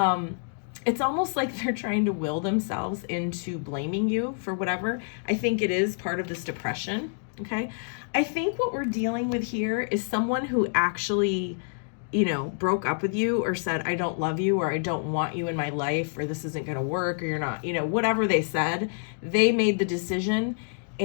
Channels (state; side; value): silent; right; digital silence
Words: It's almost like they're trying to will themselves into blaming you for whatever. I think it is part of this depression, okay? I think what we're dealing with here is someone who actually, broke up with you or said, I don't love you, or I don't want you in my life, or this isn't going to work, or you're not, whatever they said, they made the decision,